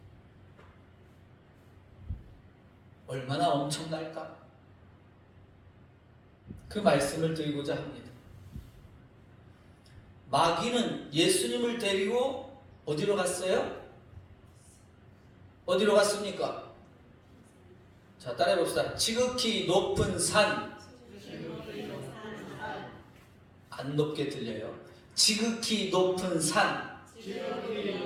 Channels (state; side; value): identical; both; correlation 1.00